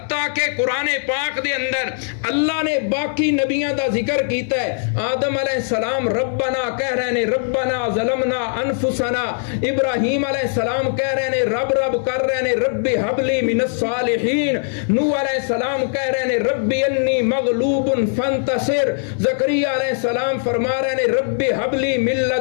کہ قرآن پاک دے اندر اللہ نے باقی نبیاں دا ذکر کیتا ہے. آدم علیہ السلام ربنا کہہ رہے نے ربنا ظلمنا انفسنا. ابراہیم علیہ السلام کہہ رہے نے رب رب کر رہے نے رب حب لی من الصالحین. نوح علیہ السلام کہہ رہے نے رب انی مغلوب فانتصر. زکریا علیہ السلام فرما رہے نے رب حب لی من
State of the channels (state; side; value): silent; right; digital silence